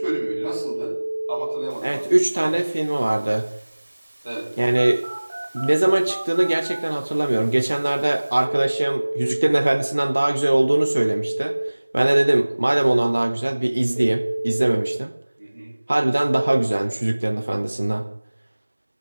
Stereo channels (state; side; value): inverted; both; correlation -1.00